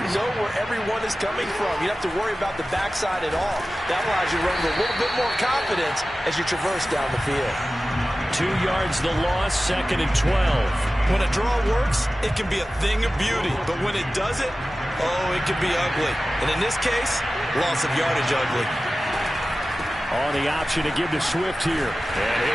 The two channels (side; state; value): both; normal; correlation 0.96